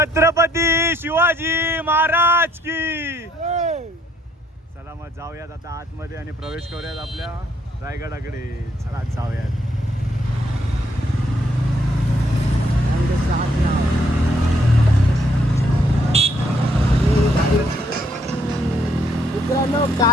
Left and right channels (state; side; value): normal; both; correlation 0.70